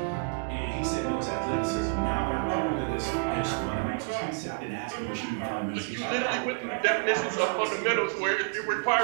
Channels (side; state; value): left; quieter; 37.7 dB